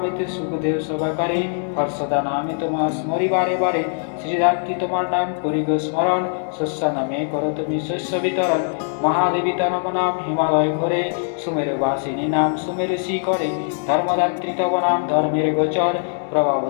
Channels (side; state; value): right; silent; digital silence